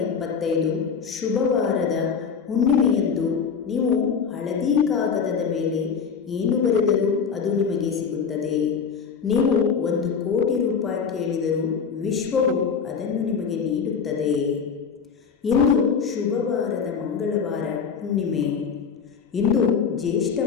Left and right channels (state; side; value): quieter; right; 6.3 dB